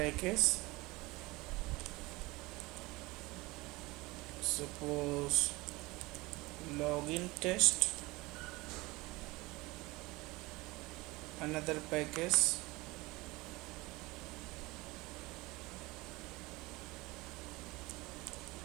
suppose login test, another package,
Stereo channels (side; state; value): left; quieter; 22.1 dB